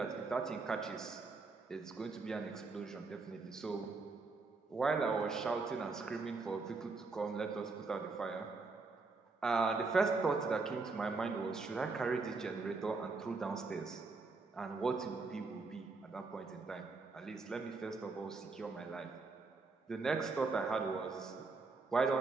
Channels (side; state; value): left; quieter; 4.0 dB